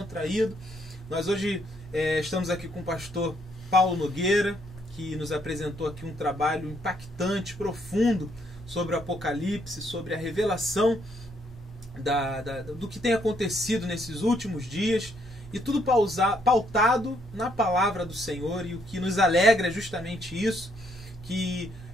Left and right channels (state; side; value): normal; both; correlation 0.71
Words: Nós hoje estamos aqui com o pastor Paulo Nogueira, que nos apresentou aqui um trabalho impactante, profundo, sobre o Apocalipse, sobre a revelação do que tem acontecido nesses últimos dias, e tudo pautado na palavra do Senhor. E o que nos alegra é justamente isso, que